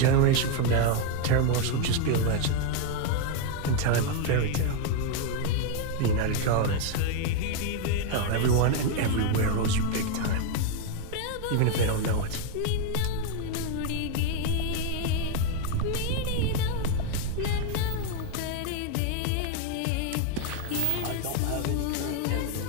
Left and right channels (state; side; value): different; both; correlation 0.01